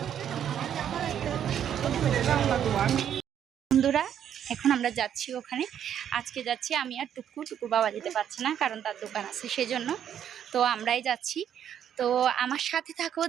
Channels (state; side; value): quieter; left; 9.5 dB